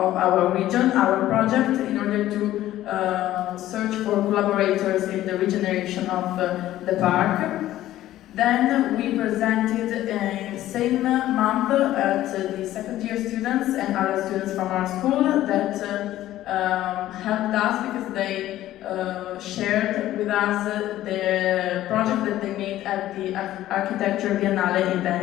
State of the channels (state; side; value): quieter; right; 14.0 dB